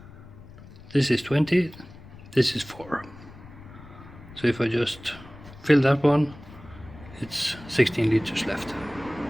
This is 20, this is 4. So if I just fill that one, it's 16 liters left.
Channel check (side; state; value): left; noise; rumble, 18 dB below the sound